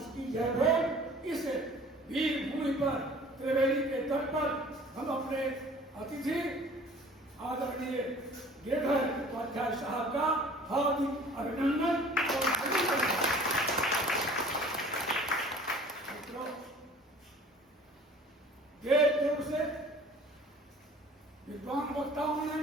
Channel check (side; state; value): both; normal; correlation 0.48